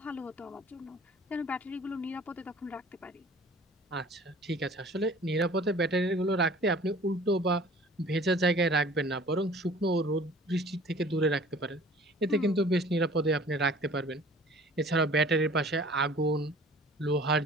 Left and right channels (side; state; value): both; normal; correlation 0.48